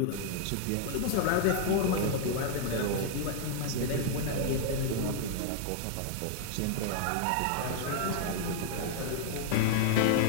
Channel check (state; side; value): different; both; correlation 0.00